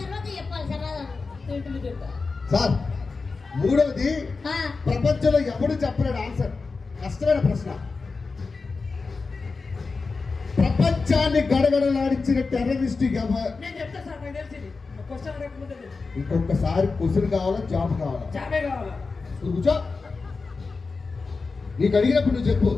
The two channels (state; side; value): quieter; right; 4.2 dB